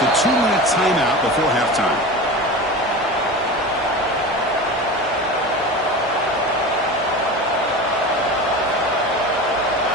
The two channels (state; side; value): normal; both; correlation 0.30